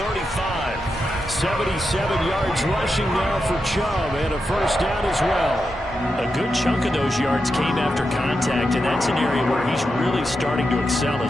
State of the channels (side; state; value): both; normal; correlation 0.87